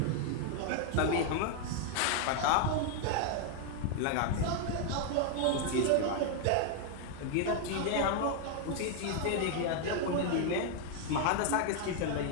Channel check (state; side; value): different; both; correlation 0.00